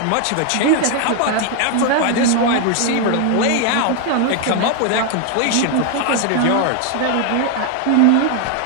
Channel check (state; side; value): different; both; correlation 0.00